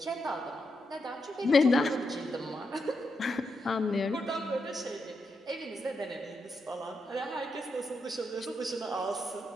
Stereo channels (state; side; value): normal; both; correlation 0.83